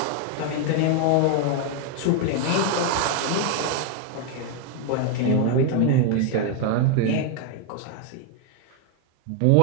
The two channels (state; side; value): different; both; correlation 0.01